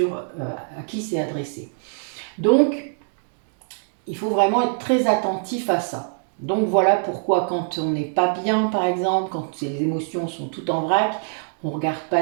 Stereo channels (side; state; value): left; silent; digital silence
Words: à qui c'est adressé. Donc, il faut vraiment être très attentif à ça. Donc voilà pourquoi quand on n'est pas bien, par exemple, quand les émotions sont toutes en vrac, on ne regarde